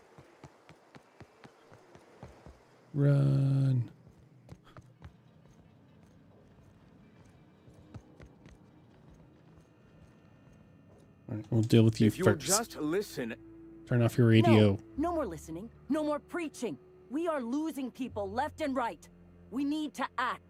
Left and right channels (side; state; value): both; identical; correlation 1.00